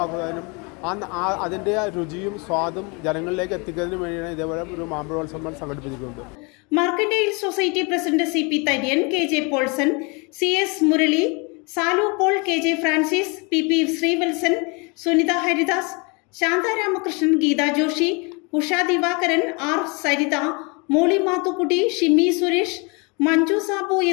അതിൻ്റെ രുചിയും സ്വാദും ജനങ്ങളിലേക്ക് എത്തിക്കുന്നതിനും വേണ്ടിയാണ് ഇതേപോലെ ഒരു മാമ്പഴോത്സവം സംഘടിപ്പിച്ചിരിക്കുന്നത്. Mercantile society president CP Tharyan, KJ Polson, CS Murali, Salu Paul, KJ Francis, PP Sreevalsan, Sunitha Haridas, Shantha Ramakrishnan, Geetha Joshi, Usha Divakaran, R Saritha, Molly Mathukutty, Shimmy Suresh, Manju Sabu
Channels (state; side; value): quieter; right; 30.7 dB